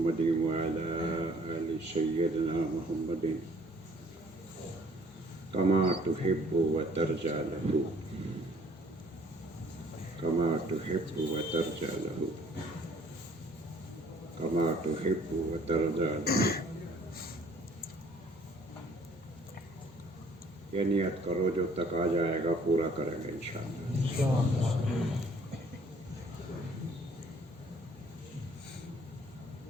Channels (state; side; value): normal; both; correlation 0.59